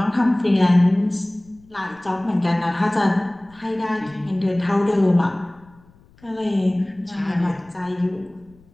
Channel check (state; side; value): noise; left; rumble, 28 dB below the sound